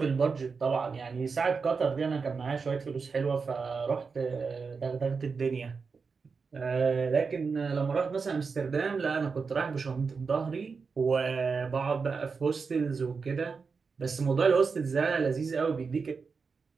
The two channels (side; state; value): left; quieter; 5.1 dB